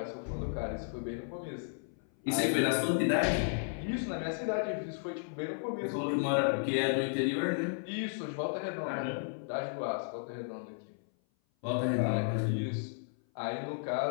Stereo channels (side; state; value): right; silent; 55 dB below the other